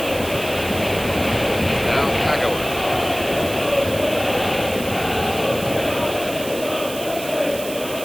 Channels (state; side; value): noise; right; hiss, 11 dB below the sound